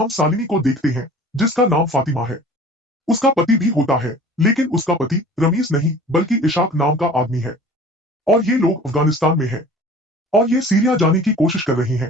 शालिनी को देखते हैं जिसका नाम फातिमा है। उसका पति भी होता है, लेकिन उसका पति रमीज नहीं बल्कि इशाक नाम का आदमी है और ये लोग अफगानिस्तान में हैं और ये सीरिया जाने की कोशिश कर रहे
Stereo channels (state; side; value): normal; both; correlation 0.44